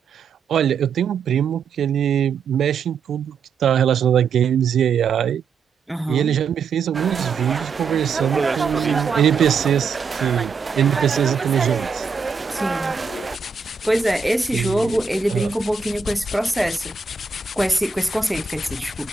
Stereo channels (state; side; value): quieter; left; 5.5 dB